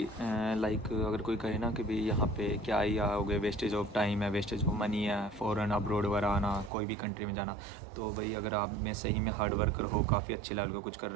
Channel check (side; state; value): left; drops out; at 6.7 s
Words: लाइक अगर कोई कहे ना कि भाई यहाँ पे क्या ही आओगे, वेस्टेज ऑफ टाइम है, वेस्टेज ऑफ मनी है, फ़ॉरेन अब्रोड वगैरह आना, कोई भी कंट्री में जाना, तो भाई अगर आप में सही में हार्ड वर्कर हो, काफ़ी अच्छे लेवल का कुछ कर